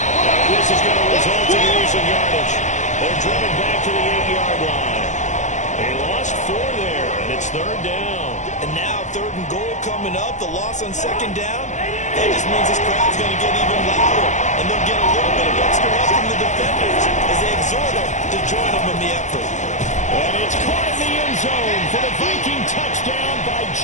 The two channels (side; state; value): right; late; 0.35 ms